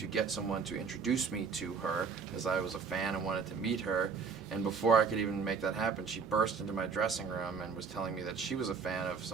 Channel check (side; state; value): left; quieter; 5.5 dB